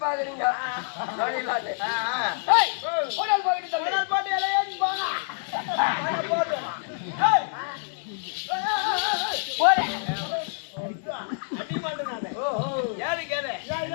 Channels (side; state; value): right; silent; 60 dB below the other